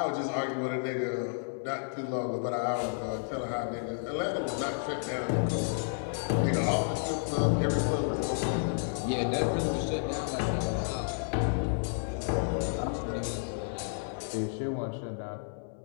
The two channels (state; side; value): silent; right; 57 dB below the other